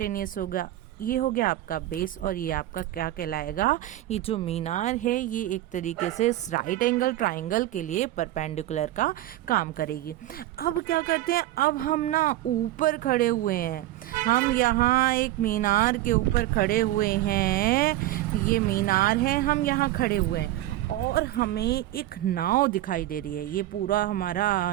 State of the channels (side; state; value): left; quieter; 15.0 dB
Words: होगा, ये हो गया आपका बेस, और ये आपका क्या कहलाएगा, ये जो मीनार है ये एक तरीके से राइट एंगल ट्राइंगल के लिए परपेंडिकुलर का काम करेगी। अब क्या करते हैं, अब हम ना ऊपर खड़े हुए हैं, हम यहाँ एक मीनार के ऊपर खड़े हुए हैं, ये मीनार है, हम यहाँ खड़े हुए हैं और हमें एक नाव दिखाई दे रही है। ये पूरा